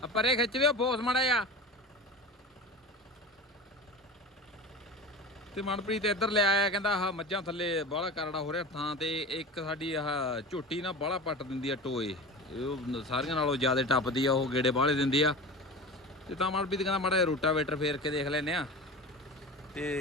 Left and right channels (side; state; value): both; normal; correlation 0.31